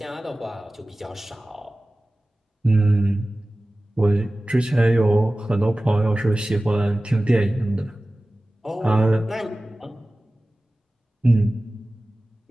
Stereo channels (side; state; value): both; normal; correlation 0.97